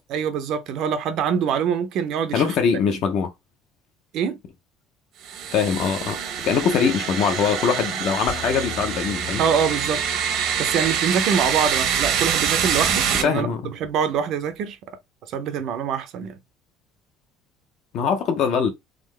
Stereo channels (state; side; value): normal; both; correlation 0.43